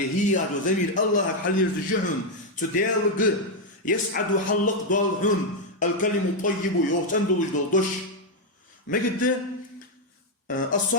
هذا زميل الله حل يرجعون تدالق يسعد حلق ضالحون الكلم الطيب يوم تندوج دش ما قد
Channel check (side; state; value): both; normal; correlation 0.01